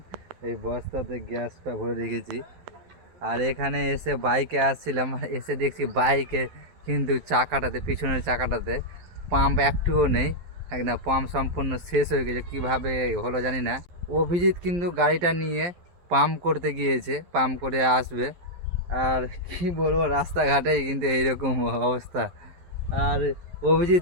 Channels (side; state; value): left; late; 11 ms